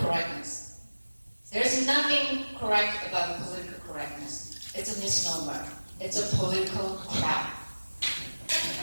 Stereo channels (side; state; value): both; inverted; correlation -1.00